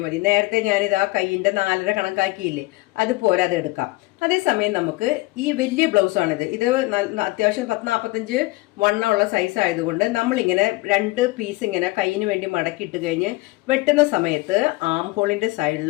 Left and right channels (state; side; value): quieter; right; 21.5 dB